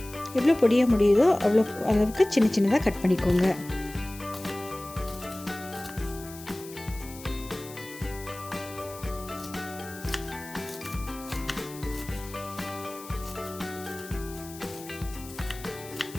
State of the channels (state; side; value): noise; left; hiss, 16 dB below the sound